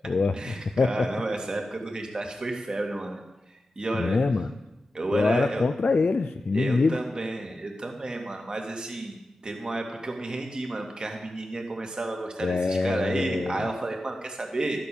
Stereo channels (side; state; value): both; normal; correlation 0.92